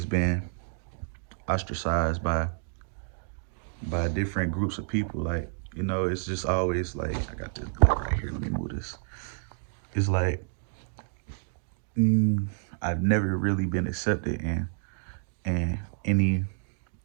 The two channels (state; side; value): silent; left; digital silence